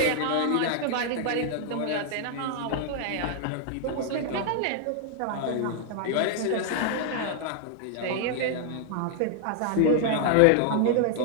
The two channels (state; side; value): different; both; correlation 0.00